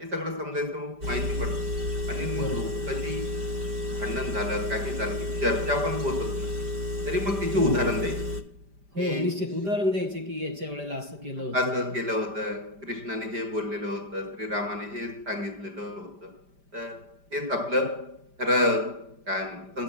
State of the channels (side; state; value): left; late; 5.0 ms